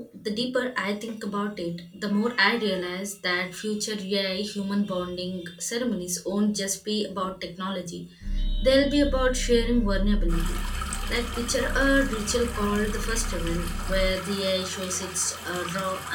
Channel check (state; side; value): identical; both; correlation 1.00